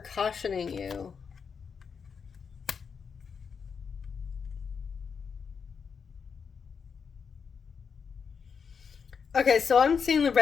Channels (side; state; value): right; quieter; 6.1 dB